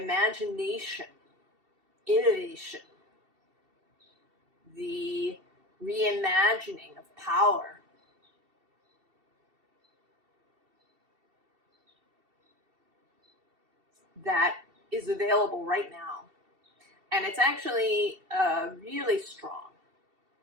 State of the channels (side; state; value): left; late; 2.7 ms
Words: innovation, the reimagining of power. That is available right now. And it's actually really strong.